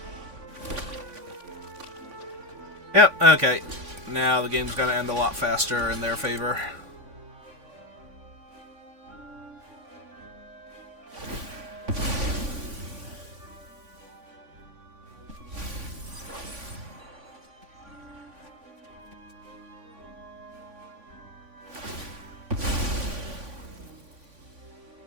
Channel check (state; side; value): late; left; 3.5 ms